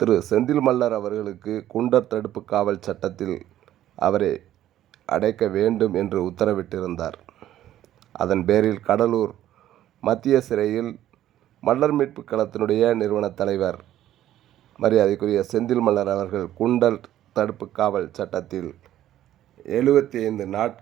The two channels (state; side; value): quieter; left; 12.6 dB